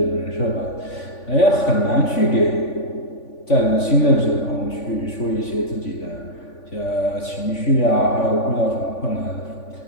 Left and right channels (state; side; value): late; right; 3.5 ms